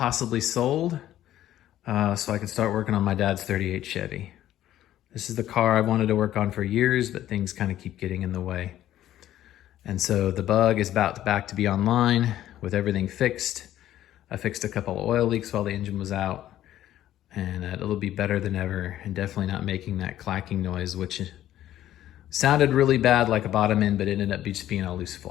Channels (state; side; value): quieter; right; 12.8 dB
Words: sold, so I can start working on my dad's 38 Chevy. This is the car I wanted to work on for years, but things kind of keep getting in the way. And so the Bug is back to be online with everything fixed. I fixed a couple of oil leaks while the engine was out, and it'll be better than ever, and definitely not making that clacking noise, which sounded really bad like a bottom end, but it ended up just being a loose